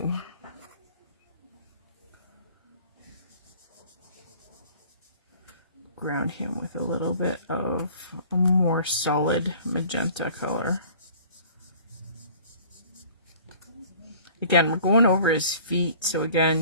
Ground him with a little bit of a more solid magenta color. Again, we're going over his feet, so again,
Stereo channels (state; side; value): inverted; both; correlation -0.49